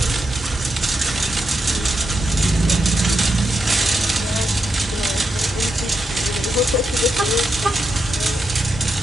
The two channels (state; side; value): normal; both; correlation 0.84